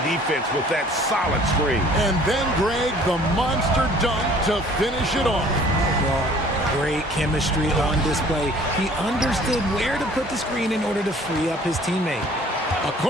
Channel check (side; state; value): both; normal; correlation 0.53